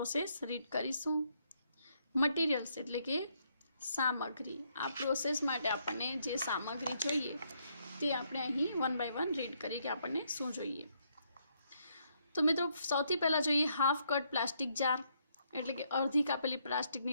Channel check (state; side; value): inverted; both; correlation -0.73